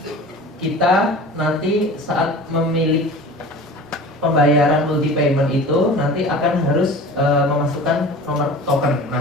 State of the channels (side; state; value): both; normal; correlation 0.38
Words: kita nanti saat memilih pembayaran multi payment itu nanti akan harus memasukkan nomor token.